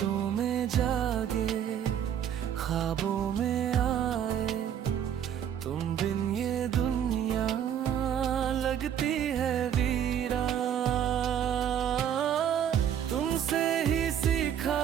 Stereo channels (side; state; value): left; quieter; 9.4 dB